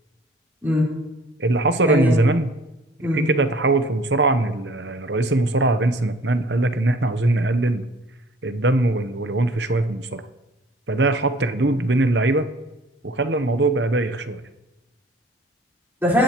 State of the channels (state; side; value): normal; both; correlation 0.52